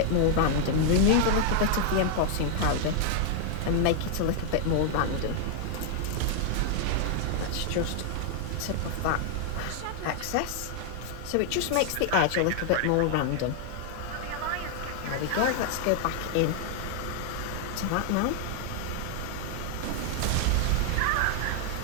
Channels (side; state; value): both; different; correlation 0.00